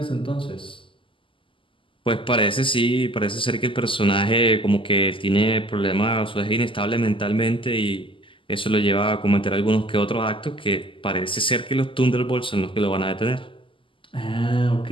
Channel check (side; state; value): right; late; 0.25 ms